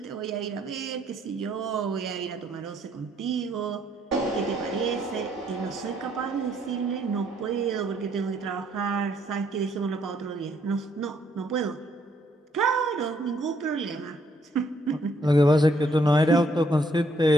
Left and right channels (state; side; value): normal; both; correlation 0.69